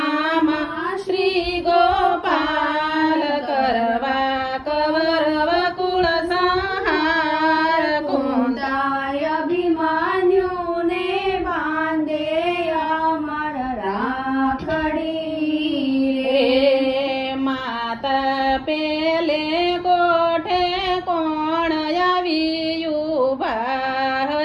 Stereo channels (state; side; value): identical; both; correlation 1.00